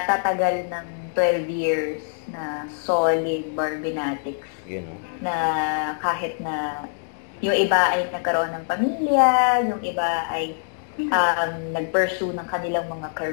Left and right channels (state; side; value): silent; right; digital silence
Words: tatagal ng 12 years na solid Barbinatics. You know. Na kahit na yung iba ay nagkaroon ng pamilya, yung iba ay nag-pursue ng kanilang mga